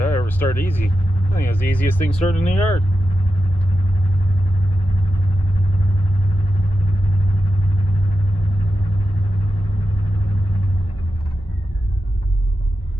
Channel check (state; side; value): normal; both; correlation 0.90